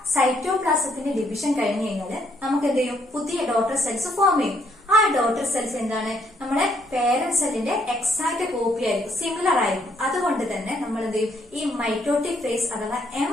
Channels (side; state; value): both; normal; correlation 0.70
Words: സൈറ്റോപ്ലാസത്തിന്റെ ഡിവിഷൻ കഴിഞ്ഞു കഴിഞ്ഞാൽ നമുക്ക് എന്ത് ചെയ്യും, പുതിയ ഡോട്ടർ സെൽസ് ഫോം ചെയ്യും. ആ ഡോട്ടർ സെൽസ് എന്താണ്, നമ്മുടെ പേരന്റ് സെല്ലിന്റെ എക്സാക്ട് കോപ്പി ആയിരിക്കും, സിമിലർ ആയിരിക്കും. അതുകൊണ്ട് തന്നെ നമ്മൾ എന്ത് ചെയ്യും, ഈ മൈറ്റോട്ടിക് ഫേസ് അഥവാ എം